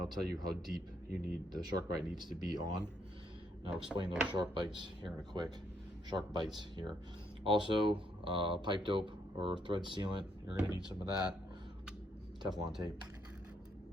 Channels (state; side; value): normal; both; correlation 0.73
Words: I'll tell you how deep the Sharkbite needs to be on. And I'll explain those shark bites here in a quick. Shark bites here. Also, pipe dope or thread sealant. You're going to need some of that. Teflon tape,